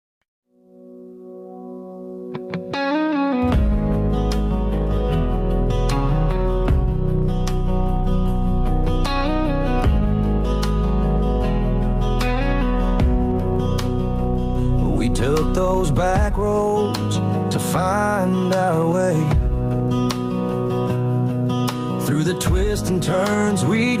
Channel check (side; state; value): both; identical; correlation 1.00